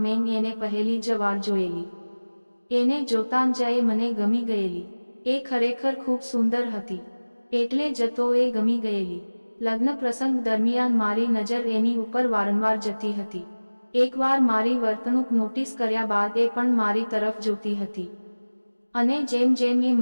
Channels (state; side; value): inverted; both; correlation -1.00